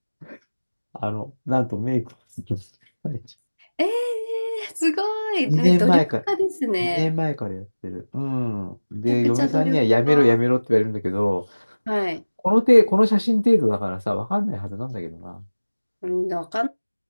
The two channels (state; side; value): inverted; both; correlation -1.00